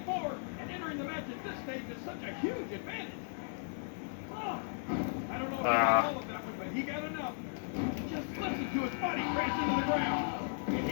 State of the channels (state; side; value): silent; right; digital silence